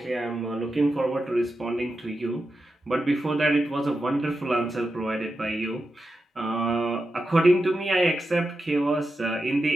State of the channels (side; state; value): both; normal; correlation 0.89